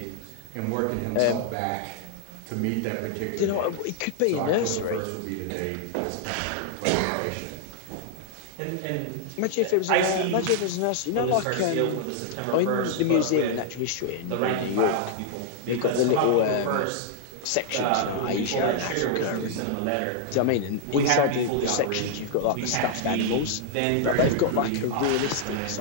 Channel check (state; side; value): different; both; correlation 0.00